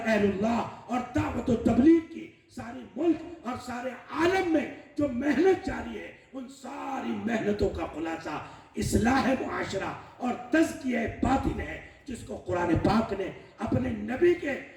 اللہ اور دعوت و تبلیغ کی سارے ملک اور سارے عالم میں جو محنت جاری ہے، ان ساری محنتوں کا خلاصہ اصلاح معاشرہ اور تزکیہ باطن ہے، جس کو قرآن پاک نے اپنے نبی کے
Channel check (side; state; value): both; identical; correlation 1.00